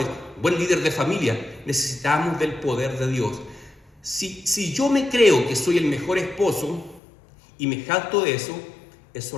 buen líder de familia. Necesitamos del poder de Dios. Si yo me creo que soy el mejor esposo y me jacto de eso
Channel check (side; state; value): right; drops out; at 7.0 s